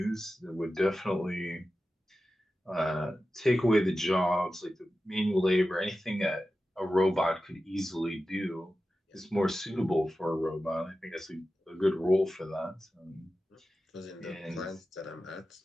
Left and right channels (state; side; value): normal; both; correlation 0.93